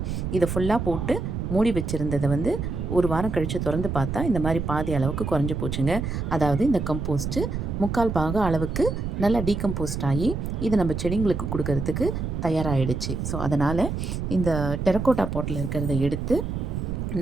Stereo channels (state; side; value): noise; right; rumble, 3 dB below the sound